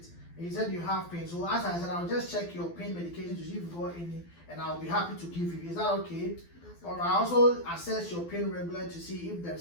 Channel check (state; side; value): late; right; 12 ms